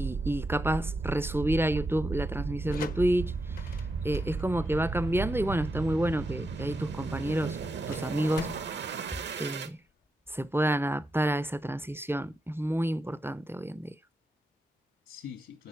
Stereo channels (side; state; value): both; normal; correlation 0.86